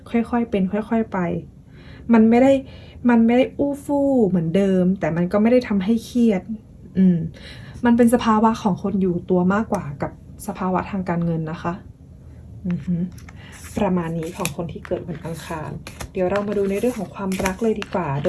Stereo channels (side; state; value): both; identical; correlation 1.00